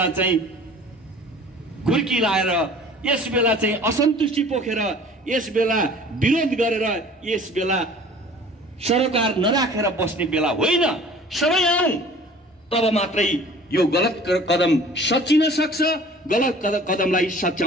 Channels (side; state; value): both; normal; correlation 0.47